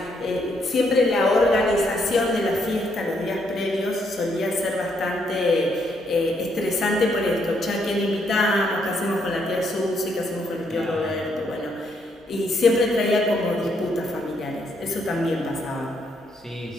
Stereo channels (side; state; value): both; normal; correlation 0.74